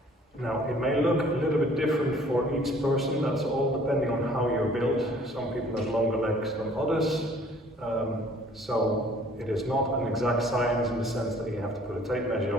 Now, it may look a little bit different for each person. That's all depending on how you're built. Some people have longer legs than others. So it is not an exact science in the sense that you have to put a tape measure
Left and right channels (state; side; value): normal; both; correlation 0.56